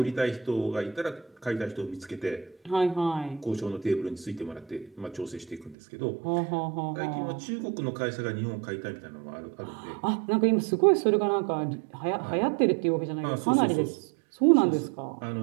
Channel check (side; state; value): left; drops out; at 5.8 s